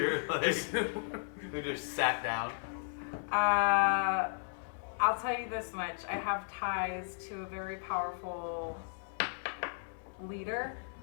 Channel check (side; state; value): right; silent; 54 dB below the other